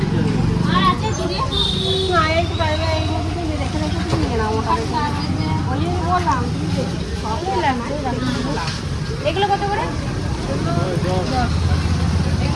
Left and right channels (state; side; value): identical; both; correlation 1.00